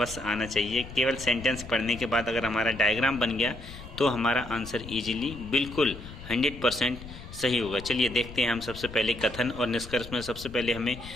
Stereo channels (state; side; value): noise; left; rumble, 14 dB below the sound